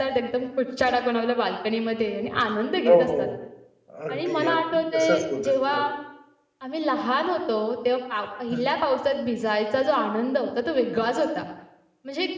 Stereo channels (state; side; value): identical; both; correlation 1.00